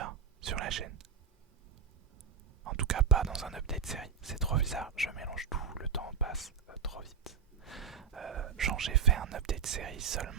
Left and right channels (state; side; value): quieter; left; 6.8 dB